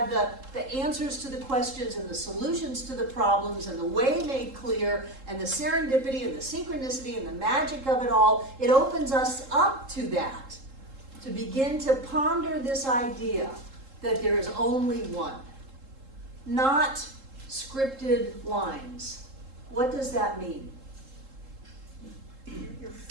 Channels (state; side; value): late; left; 3.7 ms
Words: the answers to the questions and the solutions to the problems and the way made clear and the serendipity and the synchronicity and the magic of it all. It opens us up to that, to begin to ponder this idea that there is only one, not scripted lines. What does that mean?